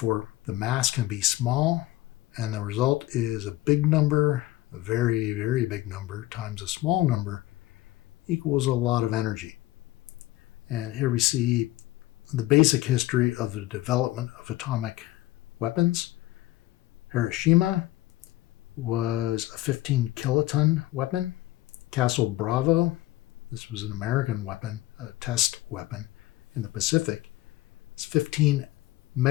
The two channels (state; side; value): quieter; right; 17.0 dB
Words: the mass can be small, and the result is a big number, a very, very big number, times a small number equals a lot of energy. And here we see the basic history of the development of atomic weapons. Hiroshima was a 15 kiloton weapon. Castle Bravo, this was an American weapon, a test weapon in the Pacific, it's 15